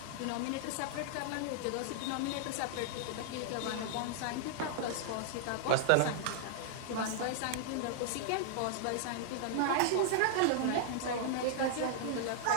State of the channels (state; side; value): different; both; correlation -0.01